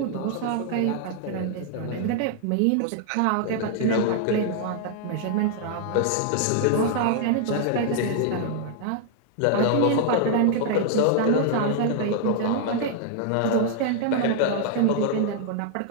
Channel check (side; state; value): both; different; correlation 0.00